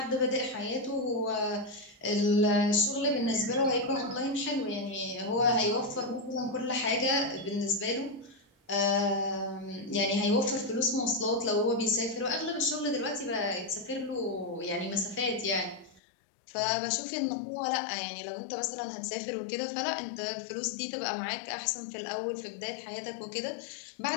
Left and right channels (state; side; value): drops out; right; at 16.0 s